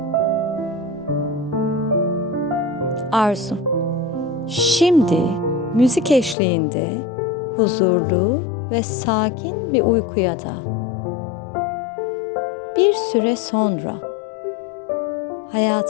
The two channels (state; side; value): drops out; right; at 6.4 s